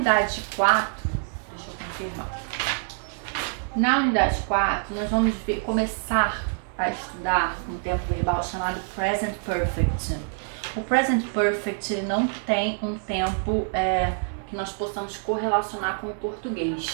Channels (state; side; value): silent; left; 61 dB below the other